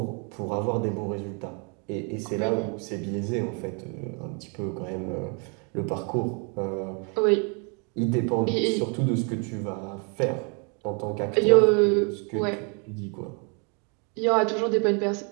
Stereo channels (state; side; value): quieter; left; 36.3 dB